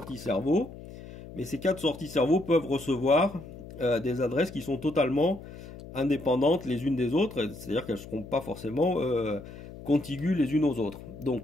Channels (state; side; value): noise; left; hum, 15 dB below the sound